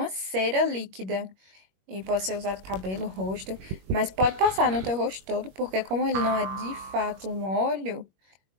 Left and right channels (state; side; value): late; left; 21 ms